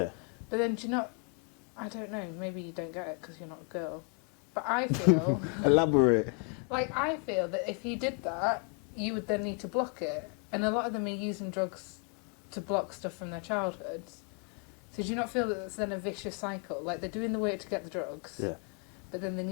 But then do you not... I don't know, maybe you don't get it because you're not a girl. But I feel... Elaborate. Like, I feel that if you did that, you would then need to block it. And a lot of them are using drugs to block stuff from their childhoods. So do you not feel that it's then a vicious cycle? Like, they're doing the work to get the drugs, but then they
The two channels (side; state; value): right; quieter; 37.9 dB